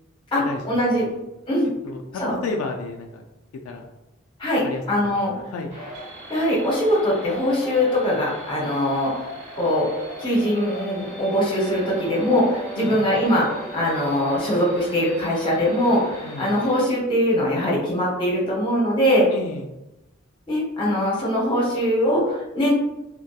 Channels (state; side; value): normal; both; correlation 0.32